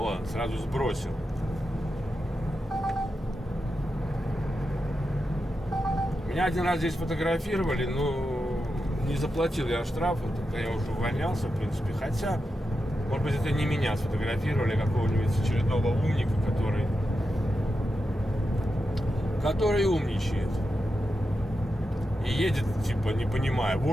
сразу сбросил. Меня один раз здесь фотографировали, но не заплатил я штраф, тогда я уже увольнялся, в принципе. Хотя, может быть, это не меня сфотографировали, а какого-нибудь очередного умника, который умничает. И едет, типа, не понимая,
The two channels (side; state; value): both; normal; correlation 0.89